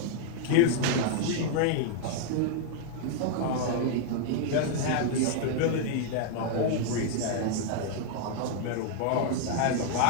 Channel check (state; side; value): different; both; correlation 0.00